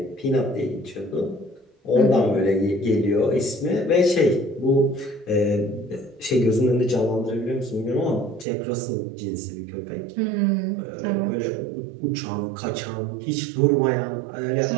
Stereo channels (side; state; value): left; drops out; at 8.5 s